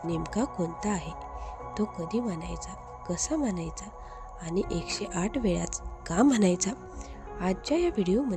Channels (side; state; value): both; identical; correlation 1.00